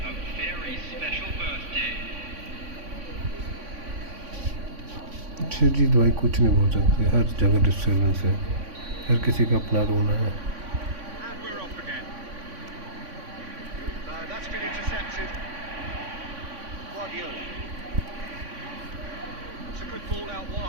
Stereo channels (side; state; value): left; late; 3.5 ms